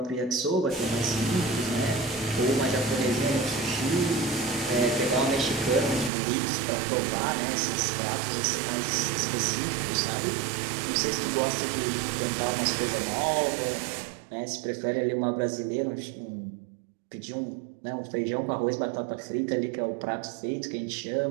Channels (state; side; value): drops out; left; at 6.1 s